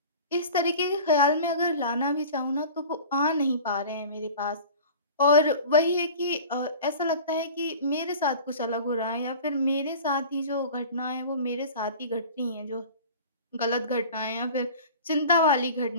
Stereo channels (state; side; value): inverted; both; correlation -0.39